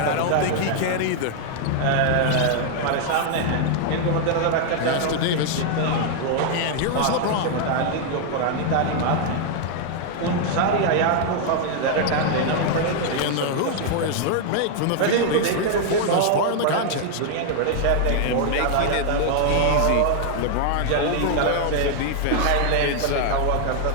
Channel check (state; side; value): different; both; correlation 0.00